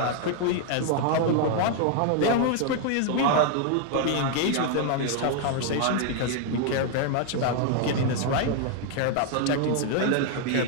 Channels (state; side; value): different; both; correlation 0.00